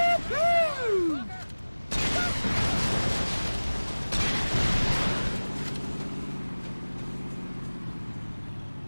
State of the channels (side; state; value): both; inverted; correlation -1.00